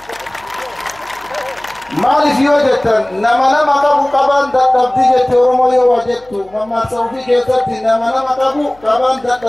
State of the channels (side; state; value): left; noise; hum, 29 dB below the sound